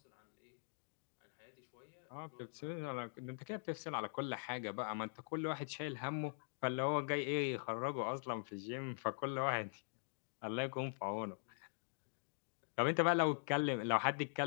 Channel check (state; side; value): silent; right; digital silence